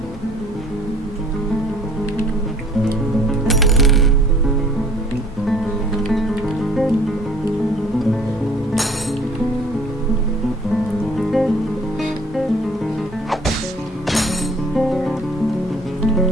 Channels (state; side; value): normal; both; correlation 0.55